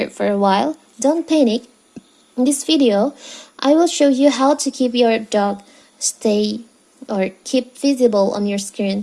for a while? Don't panic. In this video, I will show you how to keep your dock stay or keep visible on your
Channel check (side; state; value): both; identical; correlation 1.00